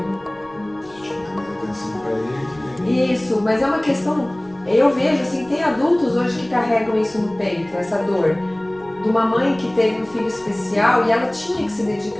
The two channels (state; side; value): noise; left; rumble, 26 dB below the sound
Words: Isso, mas é uma questão, eu vejo assim, tem adultos hoje que carregam isso no peito, essa dor. De uma mãe que teve um filho especial e ela tinha que se